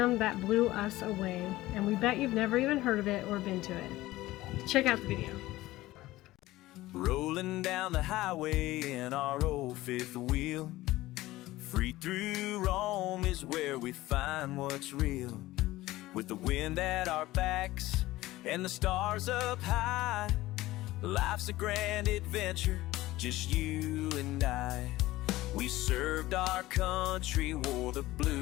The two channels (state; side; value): quieter; right; 17.3 dB